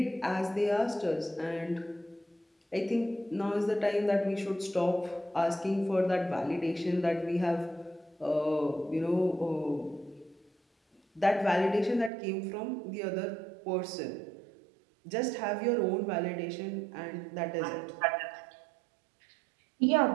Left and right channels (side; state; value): left; drops out; at 12.1 s